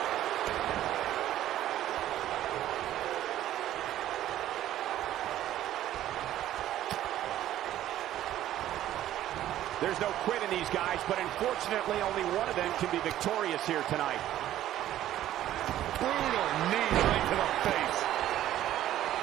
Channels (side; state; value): left; quieter; 12.9 dB